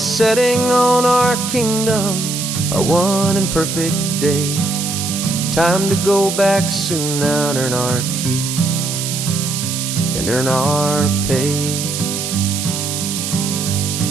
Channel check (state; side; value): noise; right; hiss, 4 dB below the sound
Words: setting on our kingdom, our one and perfect day. Time to go back soon now and earn our keep and earn our pay.